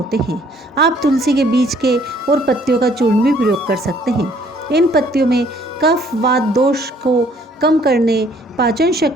हैं। आप तुलसी के बीज के और पत्तियों का चूर्ण भी प्रयोग कर सकते हैं। इन पत्तियों में कफ वात दोष को कम करने, पाचन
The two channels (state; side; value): normal; both; correlation 0.61